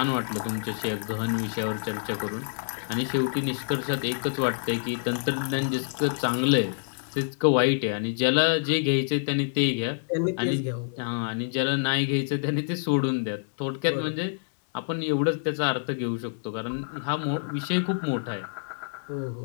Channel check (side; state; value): right; silent; 60 dB below the other